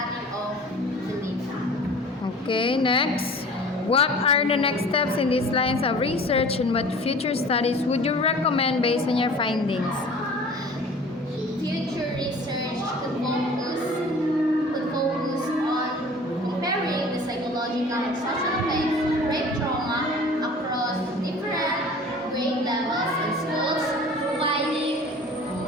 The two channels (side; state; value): both; normal; correlation 0.44